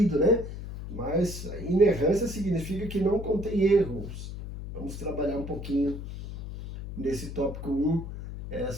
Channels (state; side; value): noise; left; hum, 9 dB below the sound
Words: né? Mas inerrância significa que não contém erros. Vamos trabalhar um pouquinho nesse tópico 1,